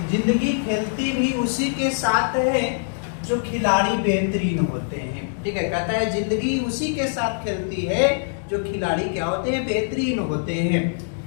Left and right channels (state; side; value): silent; right; digital silence